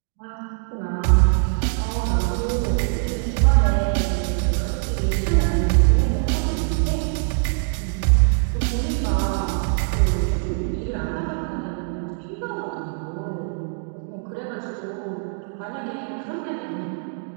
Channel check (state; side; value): silent; left; 58 dB below the other